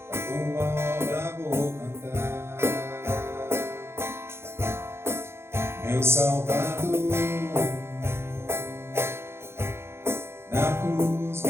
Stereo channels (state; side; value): late; left; 0.12 ms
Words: A tua obra vou cantar. Meu Salvador na cruz